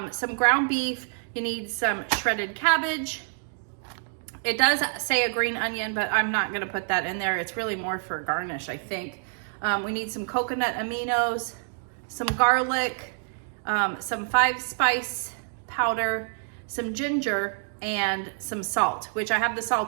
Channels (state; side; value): silent; left; 60 dB below the other